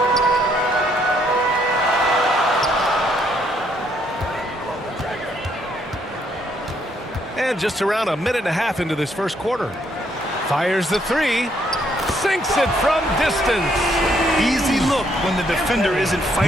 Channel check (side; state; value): both; normal; correlation 0.71